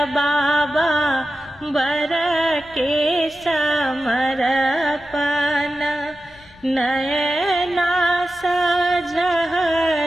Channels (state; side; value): noise; left; rumble, 26 dB below the sound